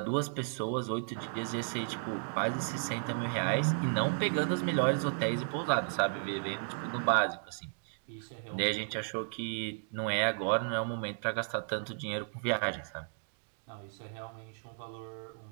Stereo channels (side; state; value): left; silent; digital silence